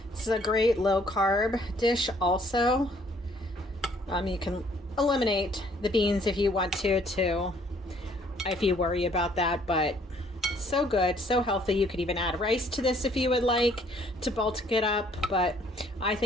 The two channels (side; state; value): both; normal; correlation 0.62